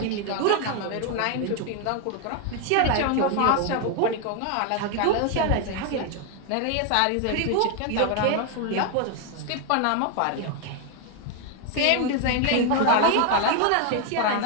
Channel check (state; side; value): different; both; correlation 0.01